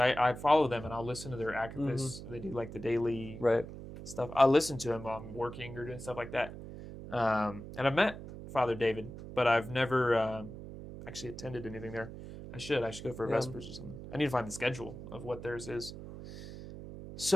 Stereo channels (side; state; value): right; noise; hum, 12 dB below the sound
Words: follow them and I'll listen to their activists. They do like the daily Right. stuff. I listen to them while I'm working or doing stuff like that. And I've met Father David, but I've never actually attended anything there. I should go for a Vespers or something. I need to find the schedule of what theirs is.